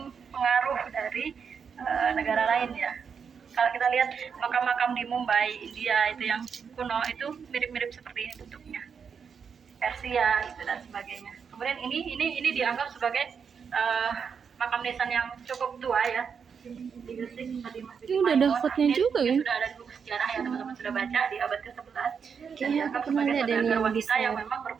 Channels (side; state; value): left; quieter; 6.5 dB